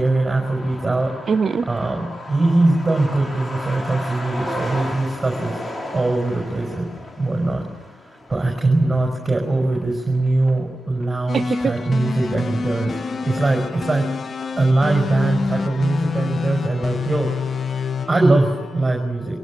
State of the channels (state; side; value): normal; both; correlation 0.93